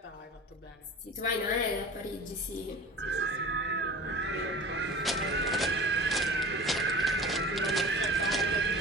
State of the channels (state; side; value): normal; both; correlation 0.37